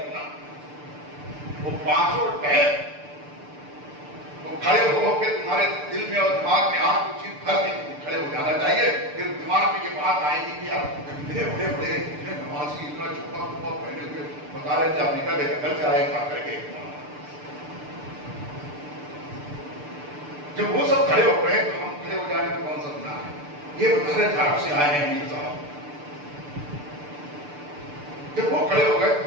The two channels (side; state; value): left; late; 6.8 ms